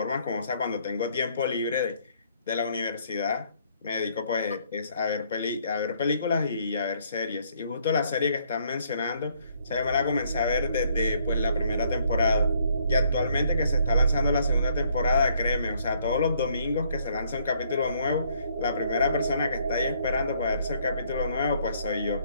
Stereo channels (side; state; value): both; inverted; correlation -0.67